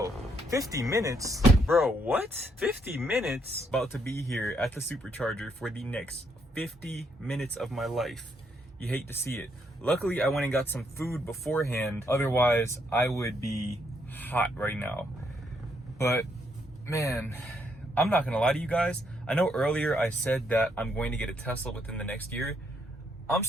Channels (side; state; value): both; normal; correlation 0.74